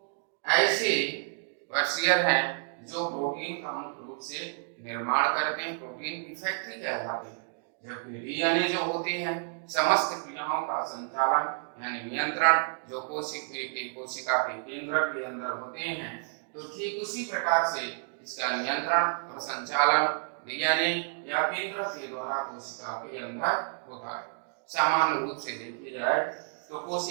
ऐसे वर्कशीयर हैं जो प्रोटीन का मुख्य रूप से निर्माण करते हैं, प्रोटीन की फैक्ट्री कहलाती है, जबकि डीएनए जो होते हैं समस्त क्रियाओं का संचालन यानी नियंत्रण जो कोशिका के केंद्र के अंदर होते हैं, तो ठीक उसी प्रकार से इसका नियंत्रण और संचालन डीएनए या केंद्र के द्वारा कोशिका के अंदर होता है। सामान्य रूप से देखी जाए तो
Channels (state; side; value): silent; left; digital silence